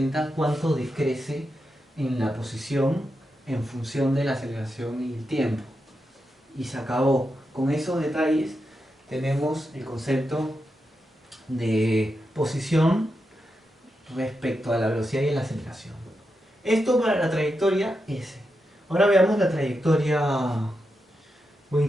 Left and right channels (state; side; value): normal; both; correlation 0.87